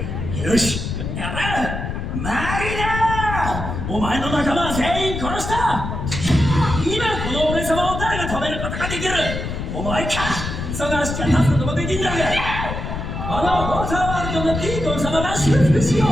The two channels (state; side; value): noise; left; rumble, 5 dB below the sound